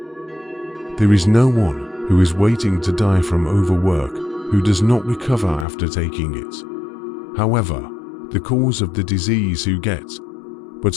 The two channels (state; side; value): drops out; right; at 5.7 s